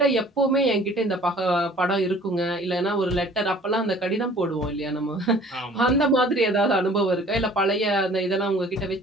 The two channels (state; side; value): normal; both; correlation 0.51